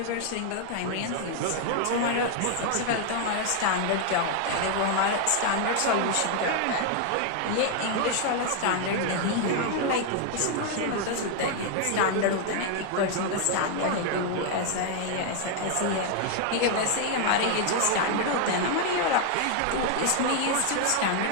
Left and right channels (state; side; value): different; both; correlation 0.00